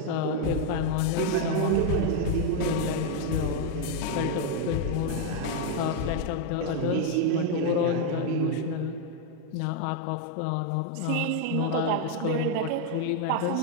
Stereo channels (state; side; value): different; both; correlation 0.01